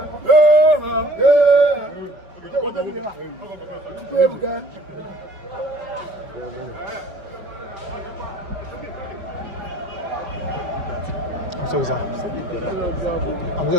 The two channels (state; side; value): late; left; 5.4 ms